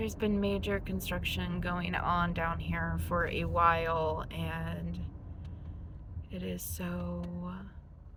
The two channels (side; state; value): both; identical; correlation 1.00